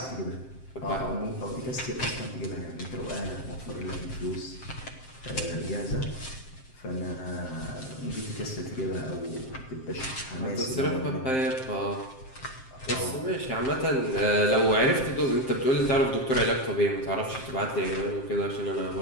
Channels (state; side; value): late; right; 7.6 ms